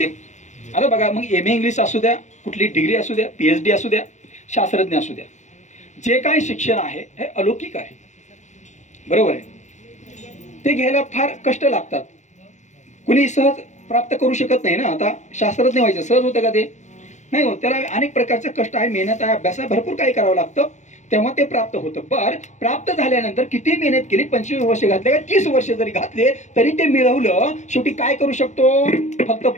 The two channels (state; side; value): late; right; 0.34 ms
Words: आता बघा, मग MA इंग्लिश असू द्या, कुठली डिग्री असू द्या, PhD असू द्या, शास्त्रज्ञ असू द्या, जे काही शिक्षण आहे हे अलौकिक आहे, बरोबर आहे. ते घ्यायला फार कष्ट लागतात, कुणी सहज प्राप्त करू शकत नाही ना. आता शास्त्रज्ञ व्हायचं सहज होतं का? ते नाही होत, त्याला अनेक प्रकारचे कष्ट आहे, मेहनत आहे, अभ्यास आहे, भरपूर काही करावं लागतं, तेव्हा ते प्राप्त होतं. बरं, प्राप्त झाल्यानंतर किती मेहनत केली, 25 वर्ष घातले का 30 वर्ष जरी घातले तरी ते मिळवलं, शेवटी काय करू शकतो? फक्त